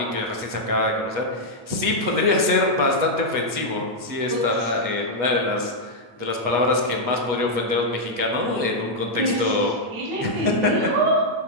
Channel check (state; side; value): late; left; 8.3 ms